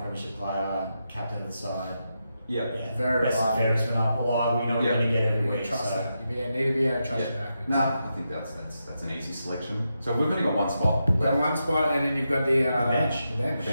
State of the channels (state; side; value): inverted; both; correlation -0.86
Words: premiership player, captain of the side. Yeah. Very best and fairest went up. Well, we know we're going to get every week. Trust So. that. You need to be able to trust your back. No, I think that's an easy selection. So we've only got one spot. You've got one spot, and then you've got the bench. The bench.